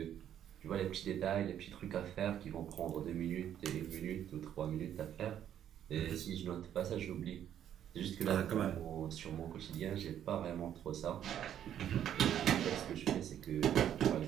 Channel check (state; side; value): quieter; left; 10.2 dB